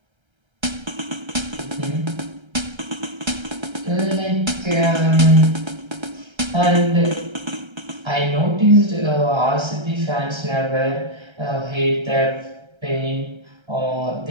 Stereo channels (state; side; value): late; left; 1.3 ms